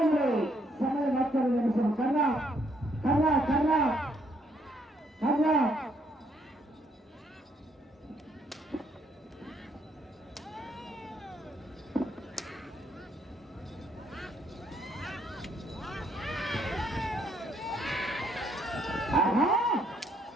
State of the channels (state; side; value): normal; both; correlation 0.70